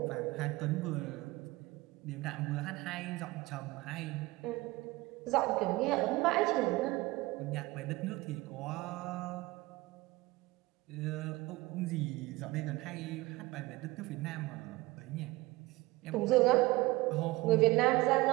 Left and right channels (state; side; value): quieter; left; 20.8 dB